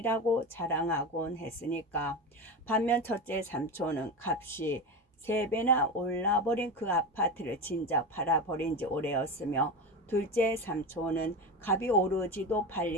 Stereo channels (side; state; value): both; normal; correlation 0.22